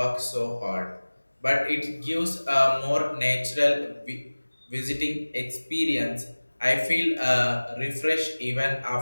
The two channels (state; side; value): inverted; both; correlation -1.00